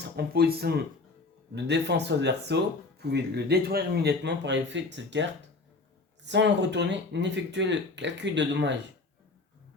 en position de défense sur le verso, vous pouvez le détruire immédiatement par effet de cette carte, sans le retourner ni effectuer le calcul de dommages.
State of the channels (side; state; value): right; quieter; 3.6 dB